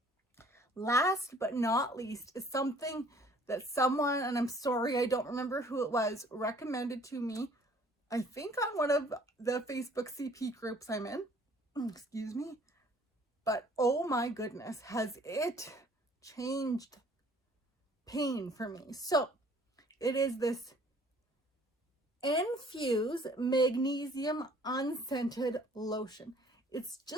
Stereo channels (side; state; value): both; normal; correlation 0.56